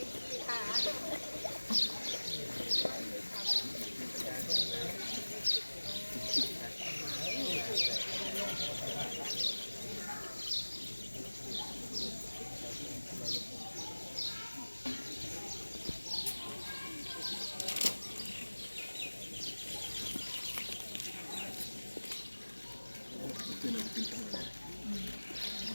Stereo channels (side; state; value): both; inverted; correlation -1.00